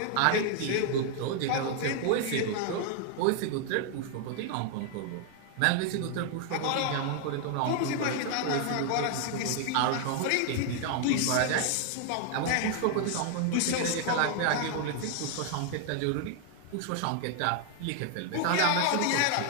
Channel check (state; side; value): different; both; correlation 0.00